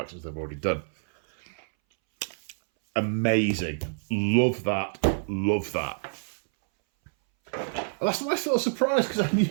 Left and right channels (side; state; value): left; silent; 60 dB below the other